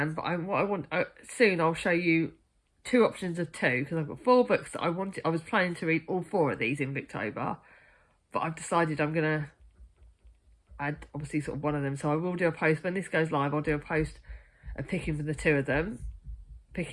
But soon I'll show you 2 options of 2, because I've got 4 books that I was planning to read all 4 of these in Victober, but I've decided I'm gonna add obviously sort of one of them. So I will do a post when this goes live. I'll do a post of picking for the 2 of them,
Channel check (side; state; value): both; identical; correlation 1.00